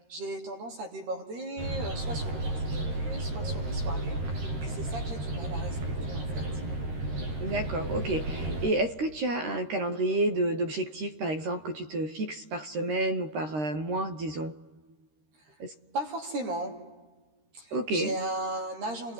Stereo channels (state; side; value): late; left; 13 ms